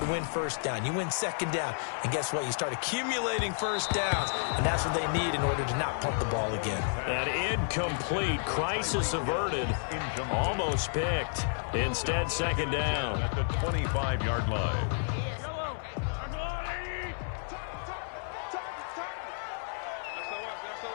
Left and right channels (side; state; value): right; silent; 57 dB below the other